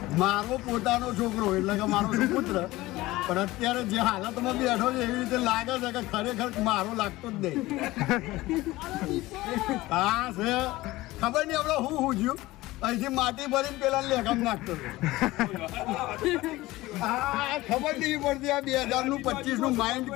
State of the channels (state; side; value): quieter; right; 18.6 dB